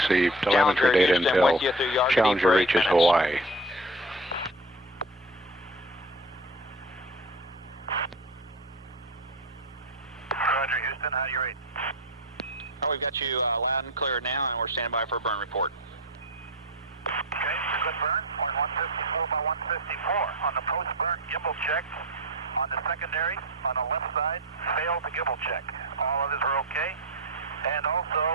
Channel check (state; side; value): normal; both; correlation 0.31